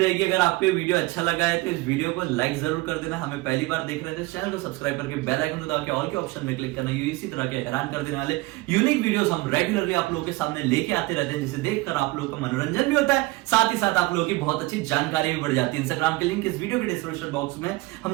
अगर आपको ये वीडियो अच्छा लगा है तो इस वीडियो को लाइक जरूर कर देना। हमें पहली बार देख रहे थे, चैनल को सब्सक्राइब करके बेल आइकन दबा के ऑल के ऑप्शन में क्लिक करना। इसी तरह के हैरान कर देने वाले यूनिक वीडियोस हम रेगुलरली आप लोगों के सामने लेके आते रहते हैं, जिसे देखकर आप लोगों का मनोरंजन भी होता है, साथ ही साथ आप लोगों की बहुत अच्छी जानकारी भी बढ़ जाती है। इंस्टाग्राम के लिंक इस वीडियो के डिस्क्रिप्शन बॉक्स में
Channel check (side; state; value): left; quieter; 21.7 dB